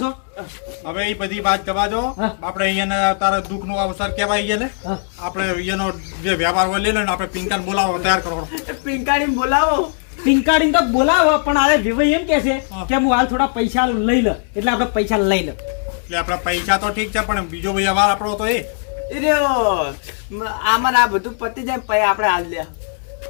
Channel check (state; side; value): silent; right; digital silence